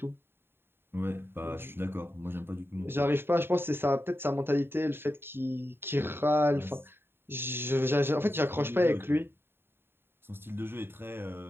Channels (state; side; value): late; left; 0.11 ms